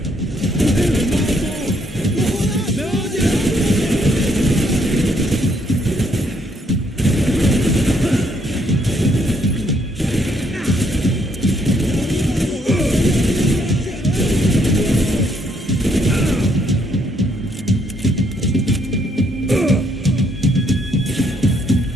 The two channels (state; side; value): normal; both; correlation 0.71